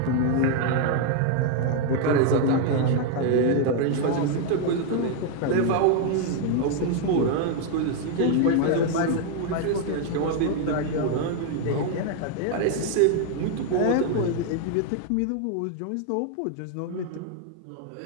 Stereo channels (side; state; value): both; different; correlation 0.00